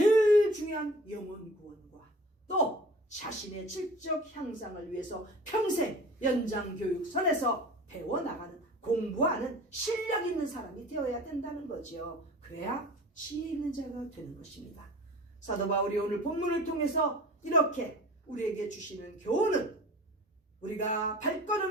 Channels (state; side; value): normal; both; correlation 0.42